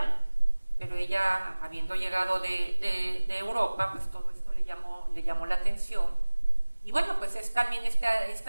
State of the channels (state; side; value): inverted; both; correlation -1.00